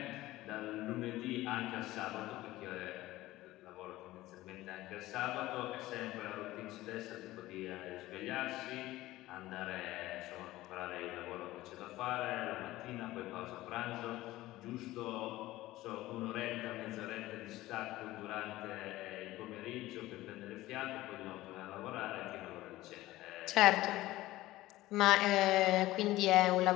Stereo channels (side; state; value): right; quieter; 17.0 dB